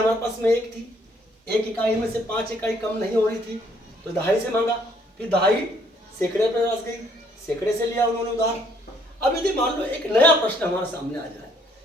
पास में एक थी, एक इकाई में से 5 इकाई कम नहीं हो रही थी, तो दहाई से मांगा, फिर दहाई सैकड़े पे बस गई, सैकड़े से लिया उन्होंने उधार। अब यदि मान लो एक नया प्रश्न हमारे सामने आ जाए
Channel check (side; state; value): both; normal; correlation 0.65